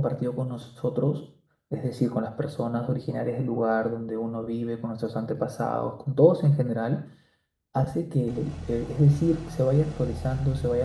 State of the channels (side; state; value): both; identical; correlation 1.00